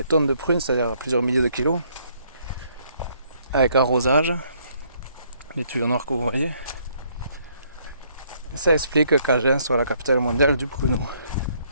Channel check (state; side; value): inverted; both; correlation -0.67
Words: tonnes de prunes, c'est-à-dire plusieurs milliers de kilos. Avec arrosage. Les tuyaux noirs que vous voyez. Ça explique qu'Agen soit la capitale mondiale du pruneau.